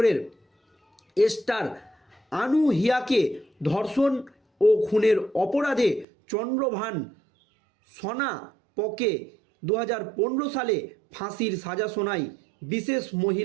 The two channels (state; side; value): drops out; left; at 6.1 s